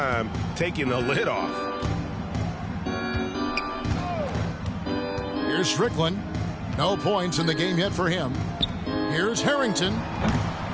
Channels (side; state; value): both; identical; correlation 1.00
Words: taking the lid off. Here's Strickland. No points in the game yet for him. Here's Harrington.